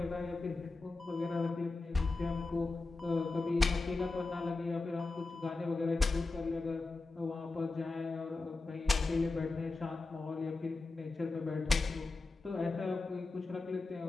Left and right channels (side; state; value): right; quieter; 3.5 dB